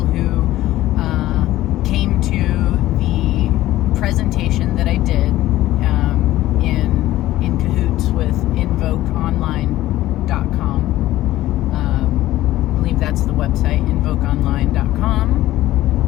came to the presentation that I did in cahoots with invokeonline.com. I believe that's the website,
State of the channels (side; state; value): right; quieter; 15.3 dB